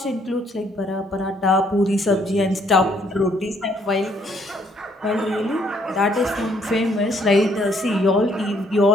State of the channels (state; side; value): normal; both; correlation 0.67